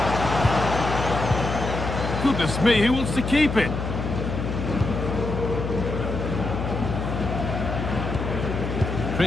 Goodness me, who wants to keep it?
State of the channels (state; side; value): noise; left; hum, 3 dB below the sound